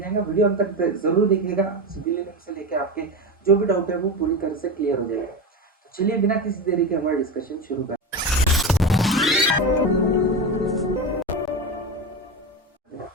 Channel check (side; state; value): both; normal; correlation 0.20